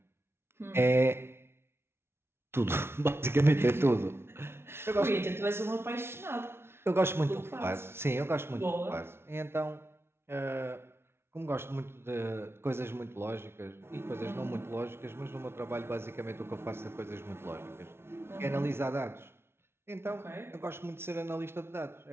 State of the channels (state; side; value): late; left; 0.12 ms